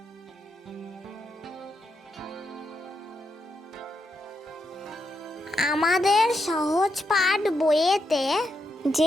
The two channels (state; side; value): normal; both; correlation 0.82